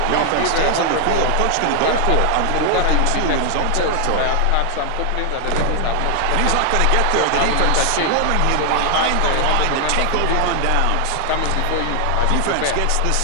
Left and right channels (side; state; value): both; different; correlation 0.00